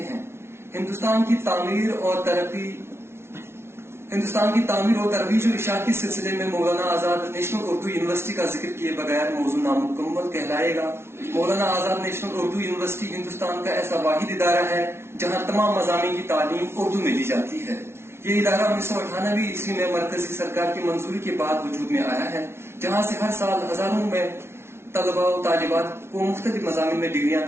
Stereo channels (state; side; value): late; left; 0.12 ms